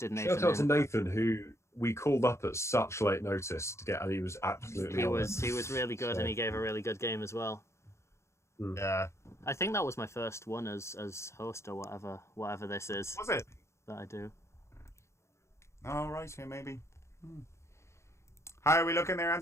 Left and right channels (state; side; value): late; right; 0.13 ms